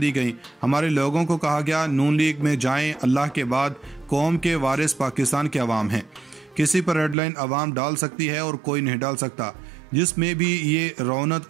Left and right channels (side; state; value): left; drops out; at 7.2 s